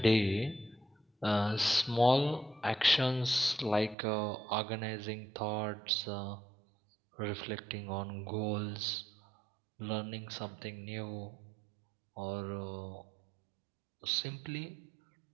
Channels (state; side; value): drops out; left; at 4.0 s